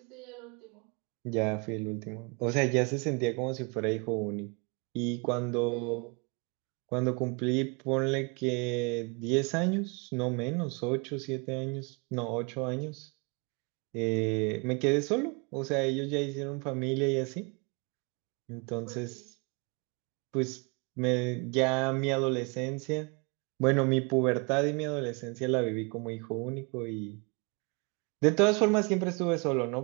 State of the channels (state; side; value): quieter; left; 32.0 dB